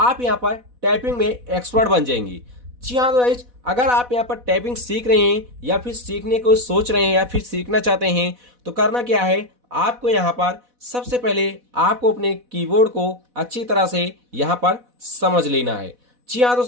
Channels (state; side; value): late; left; 4.1 ms